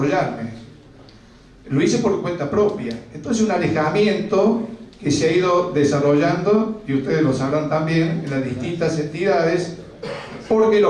lo hice por cuenta propia. Entonces un alejamiento que se ha ido desarrollando, y ustedes lo sabrán también, en las distintas entidades, porque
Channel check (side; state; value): both; identical; correlation 1.00